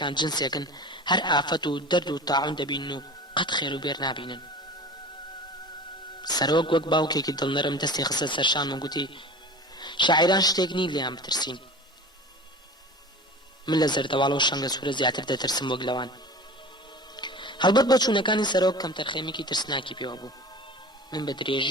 جنسێکن هەر ئافەت و دەرد و تاعون دەبینن و قەت خێر و بێر نابینن. سەرۆک وەک باوکێکی دڵنەرم دەستی خستە سەرشان و گوتی شاعیران شتێک نی لێیان بترسین. من لە زەردەواڵە و شەنگە سوورە زیاتر دەترسم وەک لەوان. هەڵبەت بە چوونەکانی سەرۆک کەم تەرخەیمێکی ترسناکی پێوە بوو. من بە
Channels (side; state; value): both; normal; correlation 0.37